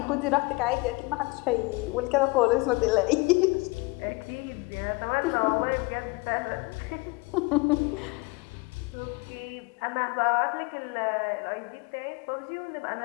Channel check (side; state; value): right; quieter; 25.9 dB